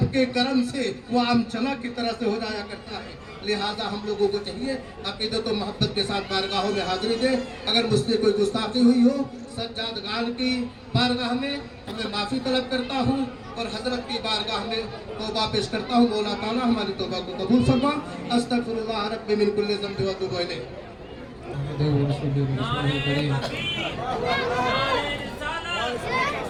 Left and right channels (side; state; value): both; identical; correlation 1.00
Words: کے کرم سے وہ عام چنا کی طرح سے ہو جایا کرتا ہے۔ لہٰذا ہم لوگوں کو چاہیے عقیدت و محبت کے ساتھ بارگاہوں میں حاضری دیں۔ اگر مجھ سے کوئی گستاخی ہوئی ہو سجاد گان کی بارگاہ میں میں معافی طلب کرتا ہوں اور حضرت کی بارگاہ میں توبہ پیش کرتا ہوں۔ مولا تعالیٰ ہماری توبہ کو قبول فرما۔ استغفر اللہ رب من کل ذنب و اتوب الیہ۔